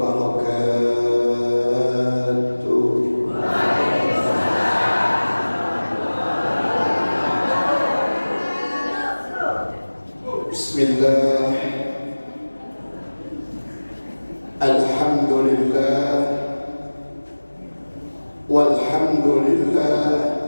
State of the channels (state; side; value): inverted; both; correlation -1.00